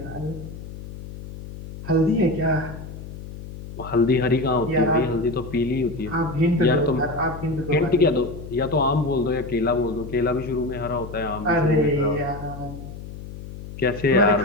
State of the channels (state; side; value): noise; left; hum, 12 dB below the sound